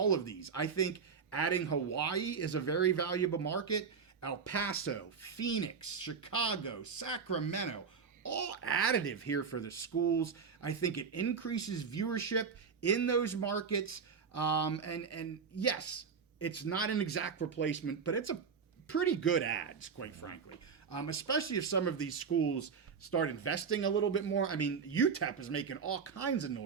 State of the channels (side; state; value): left; quieter; 5.9 dB